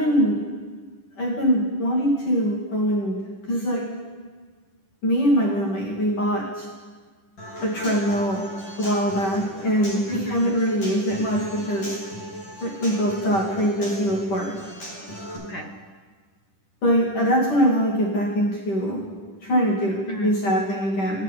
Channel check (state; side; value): late; right; 10 ms